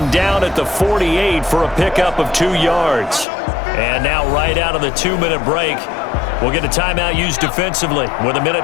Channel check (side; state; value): right; drops out; at 3.2 s